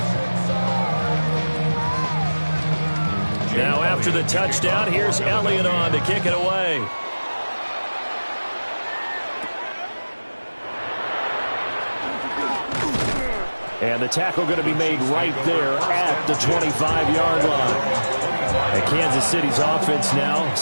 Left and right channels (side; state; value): both; inverted; correlation -1.00